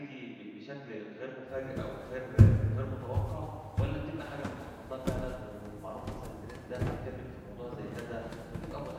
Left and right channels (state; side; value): identical; both; correlation 1.00